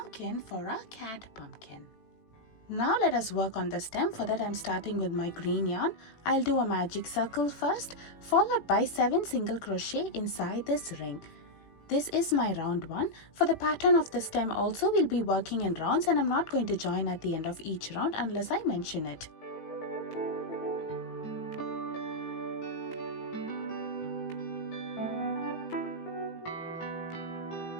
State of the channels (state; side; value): late; right; 18 ms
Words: for our cat pumpkin. Now let us work on the stem. For that, I'm starting with my green yarn. I'll do a magic circle first, followed by 7 single crochet inside this ring. This is my round 1. For the pattern of the stem also, we'll be working in rounds, and I'm not going to join at the end of each round unless I mention it.